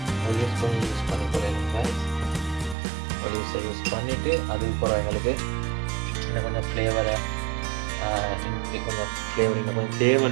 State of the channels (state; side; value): drops out; left; at 2.8 s